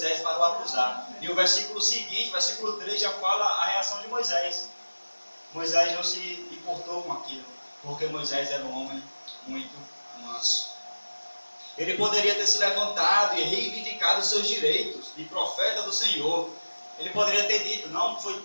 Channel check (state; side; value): inverted; both; correlation -1.00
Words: para o acusar. E o versículo seguinte, versículo 3, já fala a reação de Moisés. Moisés não se importou com aquilo, porque Moisés era um homem muito manso. Ele poderia ter se levantado e reivindicado os seus direitos de profeta do Senhor. Ele poderia ter dito: não, foi